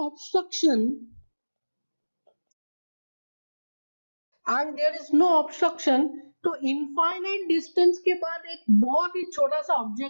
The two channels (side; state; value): both; inverted; correlation -1.00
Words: no obstruction, तो इनफाइनाइट डिस्टेंस के बाद एक बहुत ही छोटा सा